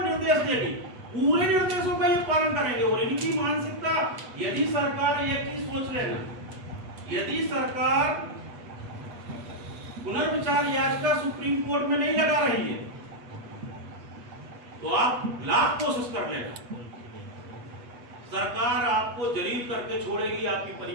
निर्देश देगी पूरे निर्देशों का ये पालन करेंगे। और इनकी मानसिकता, यदि सरकार एक चीज सोच लेना, यदि सरकार पुनर्विचार याचिका सुप्रीम कोर्ट में नहीं लगा रही है तो आप लाख कोशिश कर लेना, सरकार आपको जलील करके छोड़ेगी, आपकी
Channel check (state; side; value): late; left; 8.3 ms